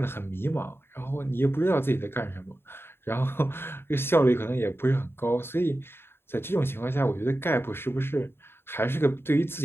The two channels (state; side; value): late; right; 0.11 ms